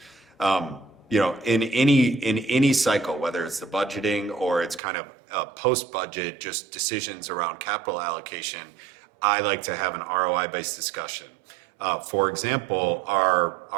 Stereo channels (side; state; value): left; drops out; at 4.8 s